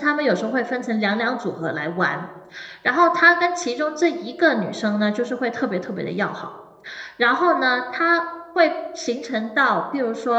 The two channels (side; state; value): both; identical; correlation 1.00